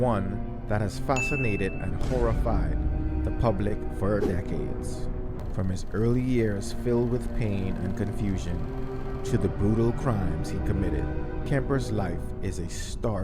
that has fascinated and horrified the public for decades. From his early years filled with pain and confusion to the brutal crimes he committed, Kemper's life is a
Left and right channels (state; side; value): identical; both; correlation 1.00